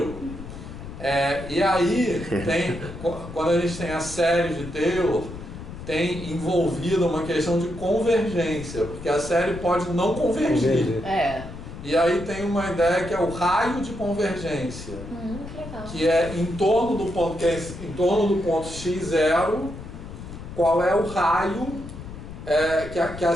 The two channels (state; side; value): noise; left; rumble, 12 dB below the sound